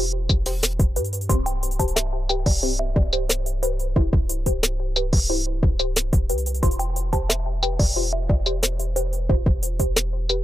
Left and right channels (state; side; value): normal; both; correlation 0.91